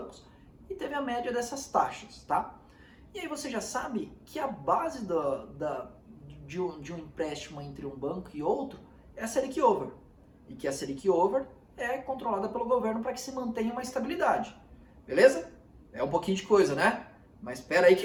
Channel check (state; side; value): identical; both; correlation 1.00